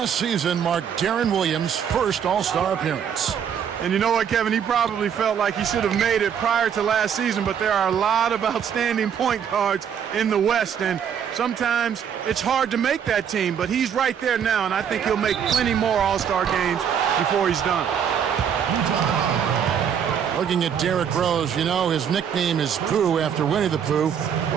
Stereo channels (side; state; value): left; quieter; 8.1 dB